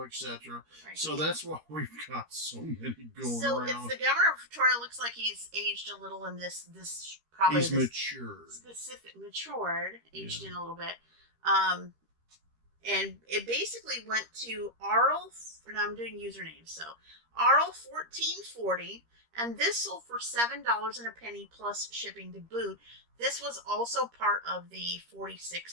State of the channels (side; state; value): left; late; 13 ms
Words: etc. Right. So that's why we've got so many going so around. So it's the Governor of Victoria. Looks like he's aged a little in this probably he's matured. Aged in a little bit. And it basically went to Arl, and I'm doing usernames, so Arl 1440, and this sold for $7 and a penny plus shipping to boot. This was also part of the 46%